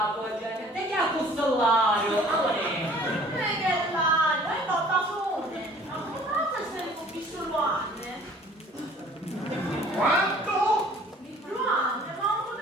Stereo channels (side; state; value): both; normal; correlation 0.52